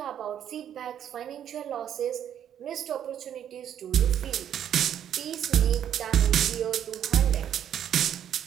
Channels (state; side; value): quieter; left; 9.8 dB